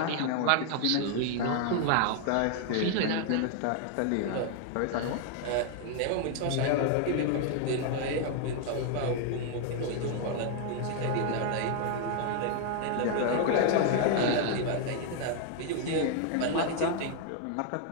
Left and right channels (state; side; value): different; both; correlation 0.00